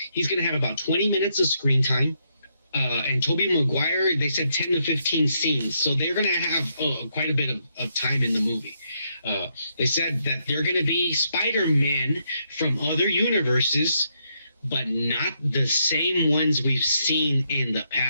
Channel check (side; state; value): both; inverted; correlation -0.77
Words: he's going to have about 20 minutes of screen time. And Tobey Maguire, they said 10 to 15 scenes. So they're going to have quite a bit of time in the movie. They said that they're going to be Spider-Man from other universes, but not the same ones we've seen in the